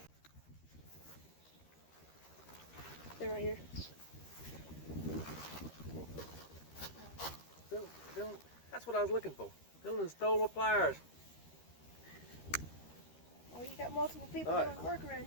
They're right here. Dylan, that's what I was looking for. Dylan stole my pliers. Oh, you got multiple people All right. doing work around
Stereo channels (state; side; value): late; right; 13 ms